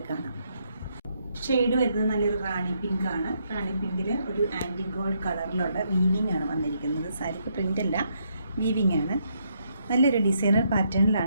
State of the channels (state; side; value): inverted; both; correlation -0.75